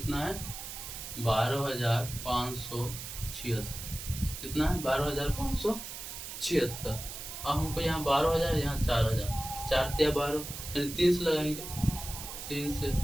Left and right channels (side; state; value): right; noise; hiss, 9 dB below the sound